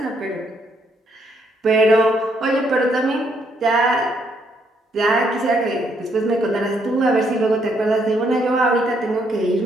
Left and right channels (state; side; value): normal; both; correlation 0.72